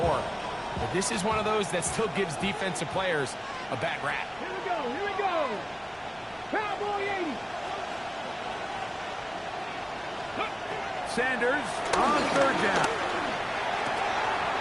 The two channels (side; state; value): both; identical; correlation 1.00